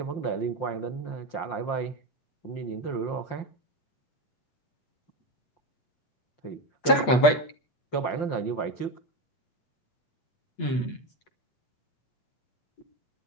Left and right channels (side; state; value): right; late; 8.3 ms